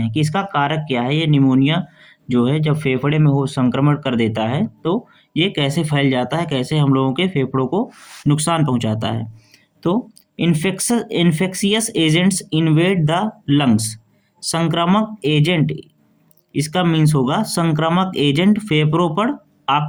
कि इसका कारक क्या है। ये निमोनिया जो है जब फेफड़े में हो संक्रमण कर देता है, तो ये कैसे फैल जाता है, कैसे हम लोगों के फेफड़ों को नुकसान पहुंचाता है। तो infectious agents invade the lungs. संक्रामक एजेंट, इसका मीन्स होगा संक्रामक एजेंट फेफड़ों पर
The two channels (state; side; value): identical; both; correlation 1.00